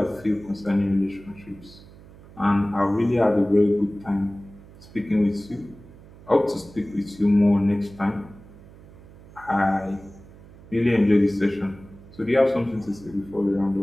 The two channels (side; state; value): right; noise; hum, 21 dB below the sound